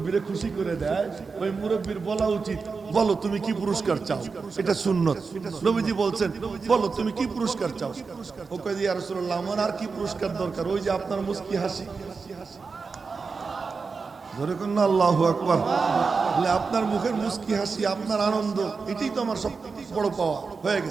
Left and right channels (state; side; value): quieter; left; 4.7 dB